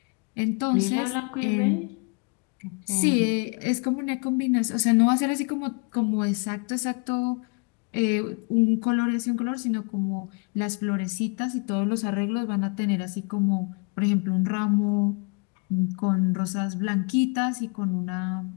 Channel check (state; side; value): quieter; right; 34.0 dB